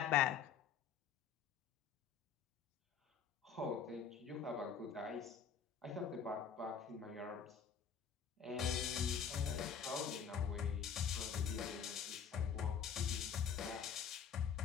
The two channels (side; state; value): right; quieter; 7.4 dB